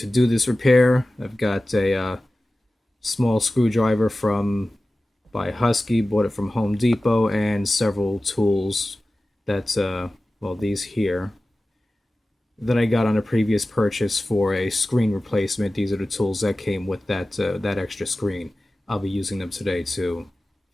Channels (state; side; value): normal; both; correlation 0.96